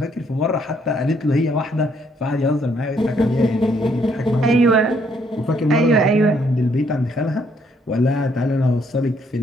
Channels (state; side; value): normal; both; correlation 0.69